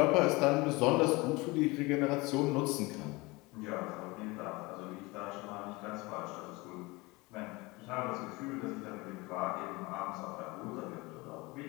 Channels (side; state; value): right; quieter; 23.6 dB